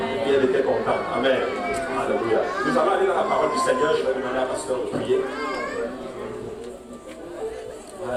Et elle était contente. Amen. Alléluia. Nous allons aller dans la parole du Seigneur. Je vais demander à pasteur de prier.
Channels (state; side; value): identical; both; correlation 1.00